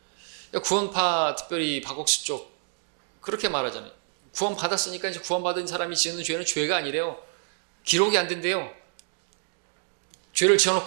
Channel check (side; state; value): left; silent; 58 dB below the other